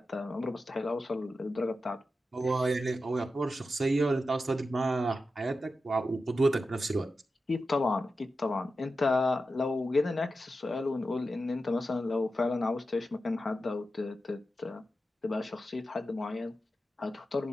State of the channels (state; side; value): normal; both; correlation 0.91